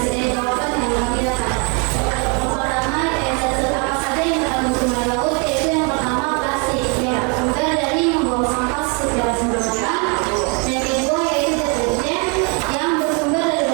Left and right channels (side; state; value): left; quieter; 34.4 dB